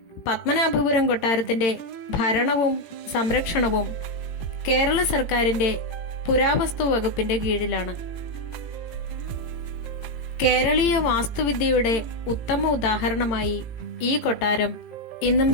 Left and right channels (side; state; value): right; late; 18 ms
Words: പത്മനാഭപുരം കൊട്ടാരത്തിന്റെ ഭരണവും സംരക്ഷണവും കേരള സർക്കാരിന്റെ പുരാവസ്തു വകുപ്പിന്റെ കീഴിലാണ്. കേരളീയ വാസ്തുവിദ്യയുടെ ഉത്തമ ഉദാഹരണമായി ഈ കൊട്ടാരം ഇന്നും